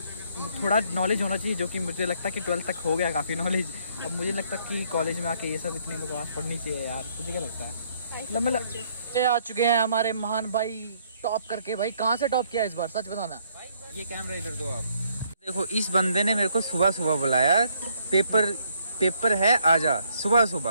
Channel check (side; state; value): both; inverted; correlation -0.68